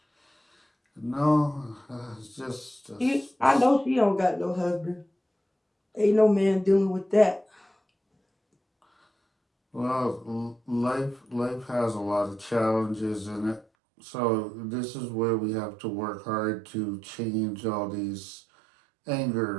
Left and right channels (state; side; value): drops out; left; at 13.7 s